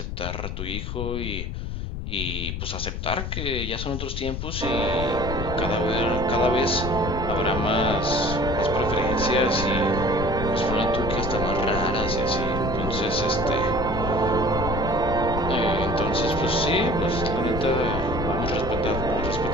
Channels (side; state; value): left; noise; rumble, 4 dB below the sound